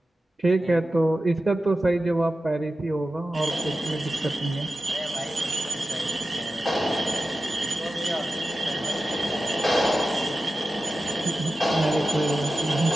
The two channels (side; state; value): both; normal; correlation 0.93